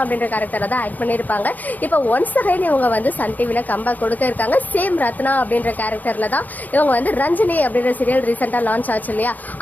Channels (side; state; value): right; late; 0.082 ms